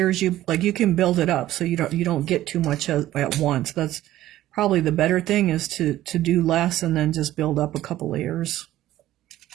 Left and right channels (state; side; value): quieter; left; 14.3 dB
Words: you can build it up, so you don't get too much at once. That's probably the better thing, is to do less and then just build up a couple layers.